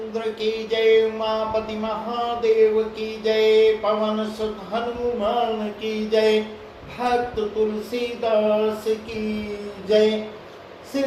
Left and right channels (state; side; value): identical; both; correlation 1.00